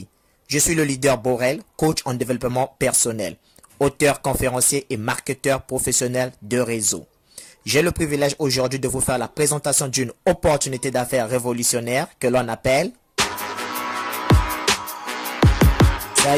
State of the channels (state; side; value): identical; both; correlation 1.00